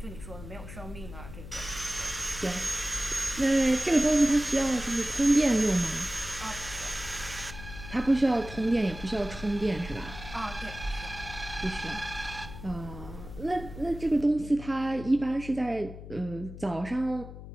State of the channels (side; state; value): left; noise; hum, 13 dB below the sound